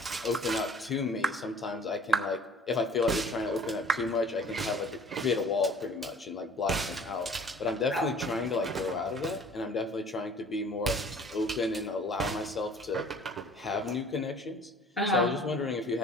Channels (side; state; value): both; normal; correlation 0.50